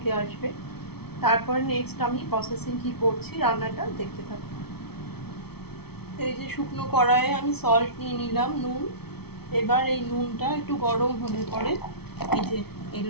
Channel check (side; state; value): right; late; 0.96 ms